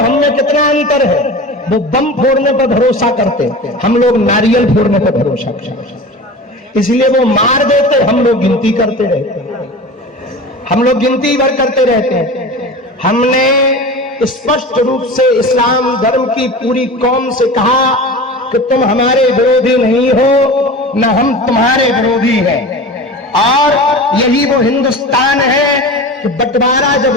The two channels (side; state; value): both; normal; correlation 0.33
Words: कितना अंतर है। वो बम फोड़ने पर भरोसा करते, हम लोग नारियल फोड़ने पर भरोसा करते। इसलिए वो मार देते, हम लोग गिनती करते रहते, हम लोग गिनती भर करते रहते हैं। हमने स्पष्ट रूप से इस्लाम धर्म की पूरी कौम से कहा कि तुम हमारे विरोधी नहीं हो, न हम तुम्हारे विरोधी हैं। और यही वो हिंदुस्तान है कि बंटवारा जब